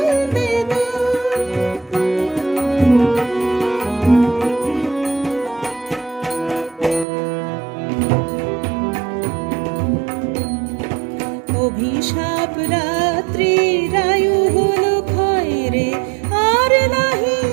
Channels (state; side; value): drops out; left; at 7.1 s